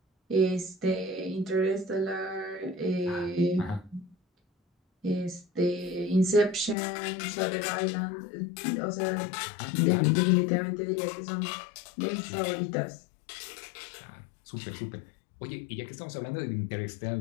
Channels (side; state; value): right; drops out; at 6.8 s